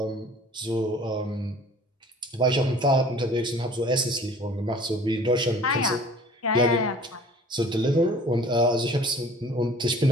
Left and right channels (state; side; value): normal; both; correlation 0.49